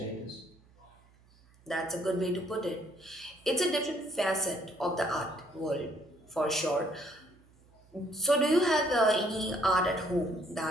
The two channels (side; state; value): right; noise; hum, 29 dB below the sound